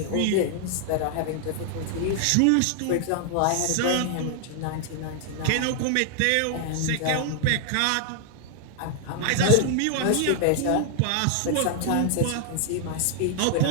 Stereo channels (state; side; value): different; both; correlation 0.00